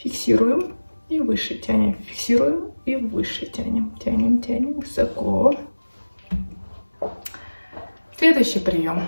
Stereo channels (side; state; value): both; inverted; correlation -1.00